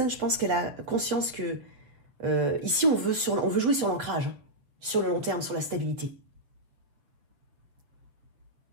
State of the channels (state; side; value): late; left; 7.3 ms